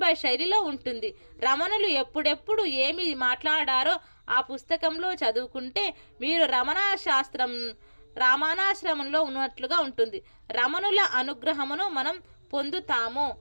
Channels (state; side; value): inverted; both; correlation -1.00